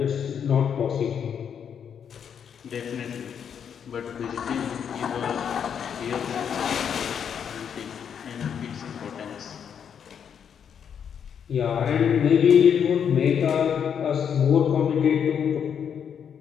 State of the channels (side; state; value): right; quieter; 7.8 dB